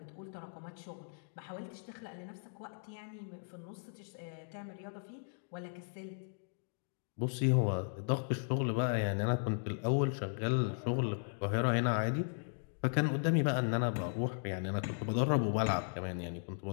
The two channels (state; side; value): silent; right; digital silence